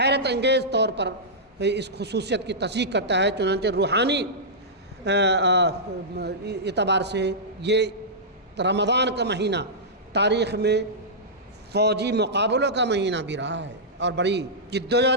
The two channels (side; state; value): both; normal; correlation -0.13